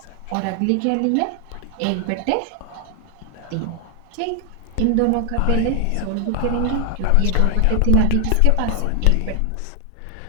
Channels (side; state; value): both; different; correlation 0.00